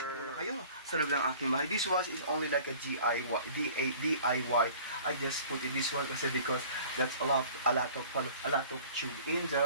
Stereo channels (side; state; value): both; inverted; correlation -0.47